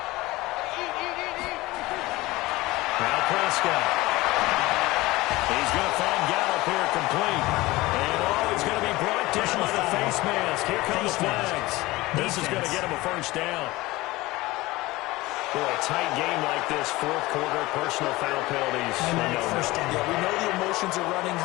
He's going to find Gallup here complete. And it's going to be brought down by the face mask. Here come the flags. This is going to get him a first down. Boy, a tight game like this, fourth quarter, personal foul penalties. Yeah, we know the emotions are running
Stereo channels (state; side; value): quieter; right; 19.9 dB